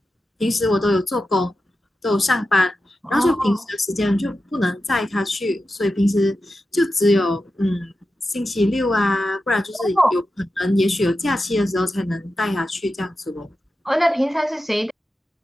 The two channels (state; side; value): normal; both; correlation 0.91